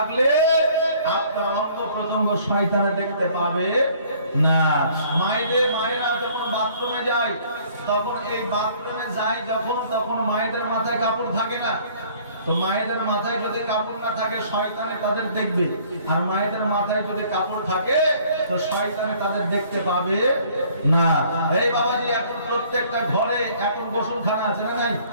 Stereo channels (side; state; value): both; inverted; correlation -0.57